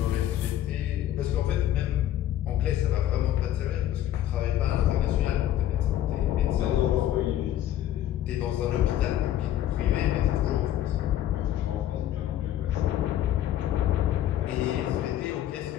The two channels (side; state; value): right; quieter; 12.2 dB